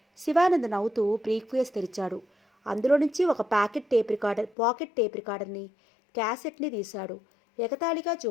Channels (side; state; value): right; drops out; at 4.5 s